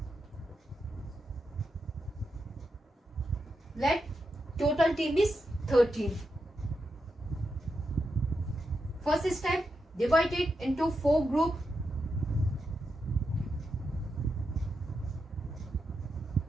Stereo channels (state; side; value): normal; both; correlation 0.86